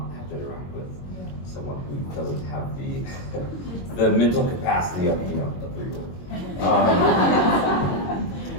have to interact with someone who doesn't have the mental capacity of a 3-year-old.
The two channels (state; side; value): late; right; 22 ms